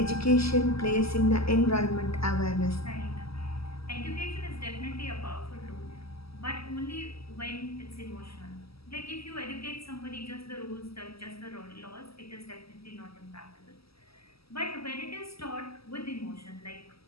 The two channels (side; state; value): right; late; 0.76 ms